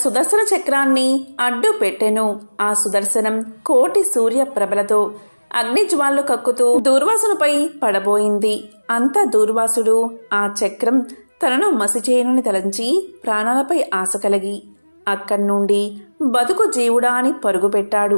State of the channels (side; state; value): both; inverted; correlation -1.00